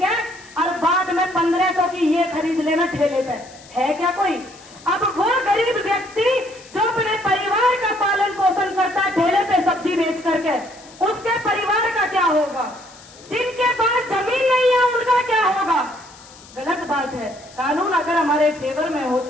और बाद में 1500 की ये खरीद लेना ठेले पे, है क्या कोई? अब वो गरीब व्यक्ति जो अपने परिवार का पालन पोषण करता है ठेले पे सब्जी बेच करके, उसके परिवार का क्या होगा? जिनके पास जमीन नहीं है उनका क्या होगा? गलत बात है। कानून अगर हमारे फेवर में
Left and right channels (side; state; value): left; noise; hiss, 22 dB below the sound